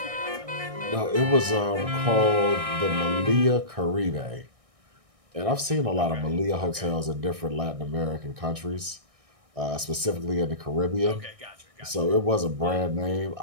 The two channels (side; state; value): left; late; 1.6 ms